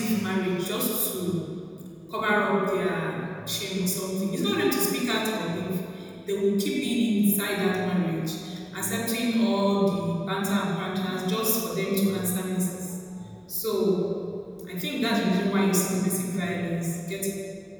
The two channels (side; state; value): both; identical; correlation 1.00